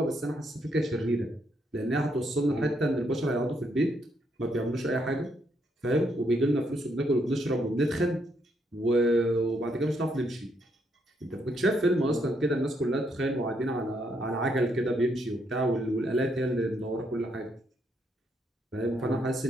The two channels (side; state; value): both; normal; correlation 0.75